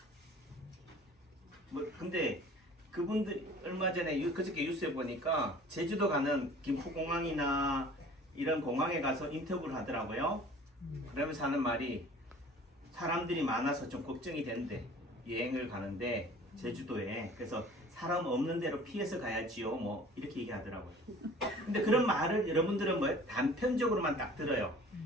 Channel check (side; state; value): both; normal; correlation 0.47